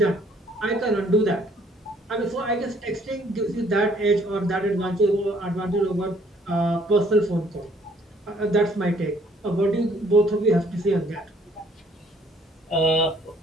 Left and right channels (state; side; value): normal; both; correlation 0.62